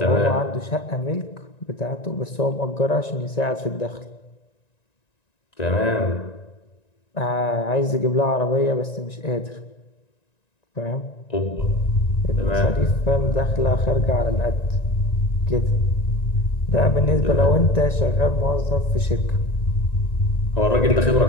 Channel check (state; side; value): late; right; 1.9 ms